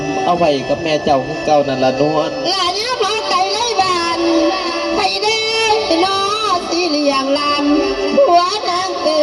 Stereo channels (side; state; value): both; identical; correlation 1.00